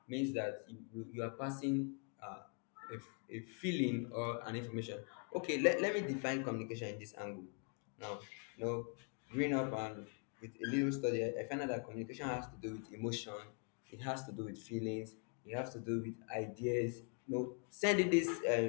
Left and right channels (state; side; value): quieter; right; 39.7 dB